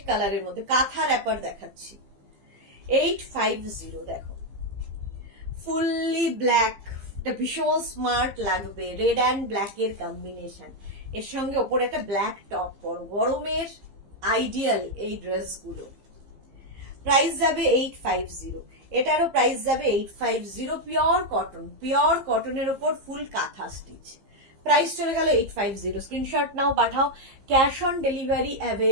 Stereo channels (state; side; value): late; left; 15 ms